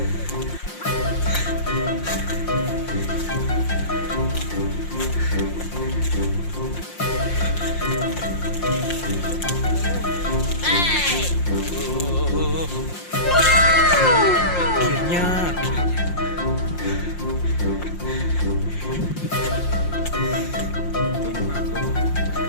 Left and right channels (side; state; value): right; late; 5.7 ms